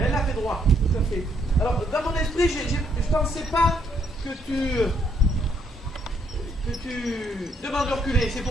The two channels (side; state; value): both; normal; correlation 0.71